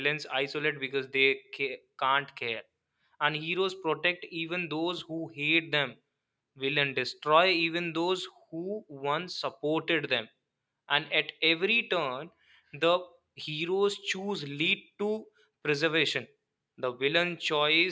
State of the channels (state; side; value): identical; both; correlation 1.00